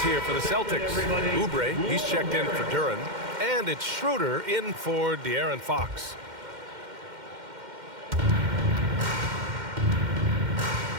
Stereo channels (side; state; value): left; late; 2.1 ms